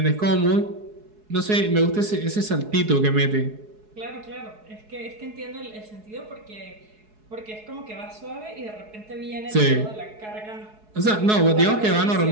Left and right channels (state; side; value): late; left; 4.7 ms